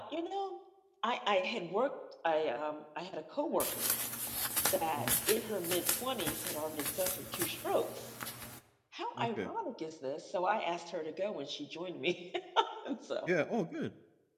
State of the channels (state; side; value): identical; both; correlation 1.00